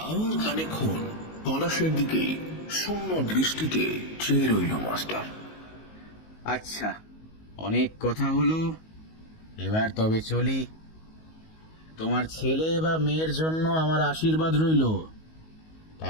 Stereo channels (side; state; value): right; late; 19 ms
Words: আর খানিকক্ষণ পলাশের দিকে শূন্য দৃষ্টিতে চেয়ে রইল মাস্টার। আচ্ছা, অনেক কথা হলো, এবার তবে চলি। তোমার ছেলে বা মেয়ের জন্য আমার আশীর্বাদ রইল।